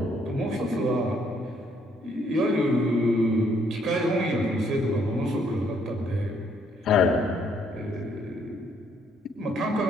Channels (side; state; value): both; normal; correlation 0.68